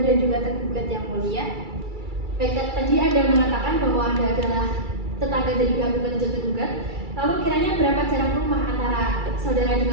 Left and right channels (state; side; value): late; left; 2.3 ms